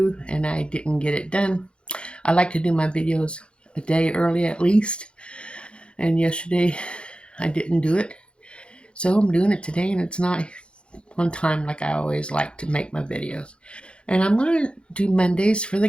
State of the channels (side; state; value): right; late; 0.056 ms